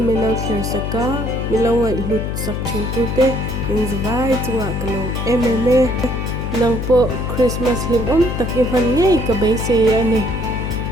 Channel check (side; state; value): left; noise; hum, 3 dB below the sound